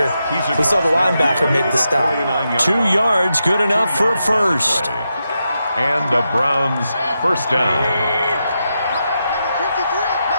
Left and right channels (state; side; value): inverted; both; correlation -0.86